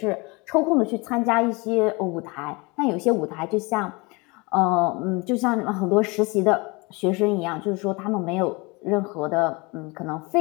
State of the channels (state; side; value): quieter; right; 26.7 dB